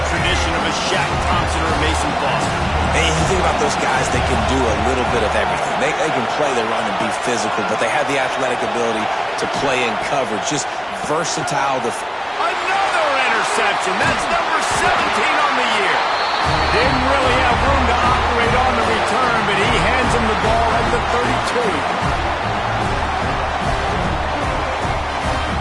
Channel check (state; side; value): identical; both; correlation 1.00